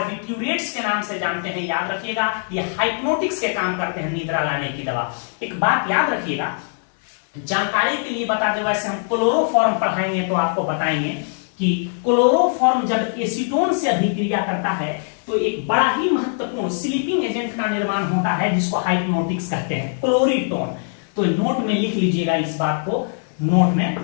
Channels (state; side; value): silent; right; 65 dB below the other